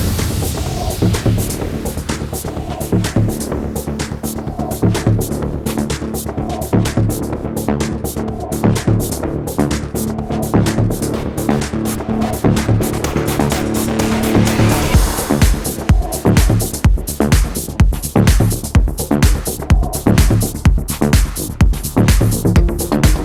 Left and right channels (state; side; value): identical; both; correlation 1.00